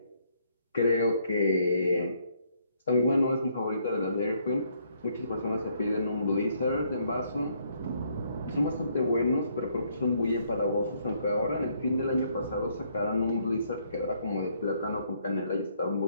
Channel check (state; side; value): inverted; both; correlation -0.69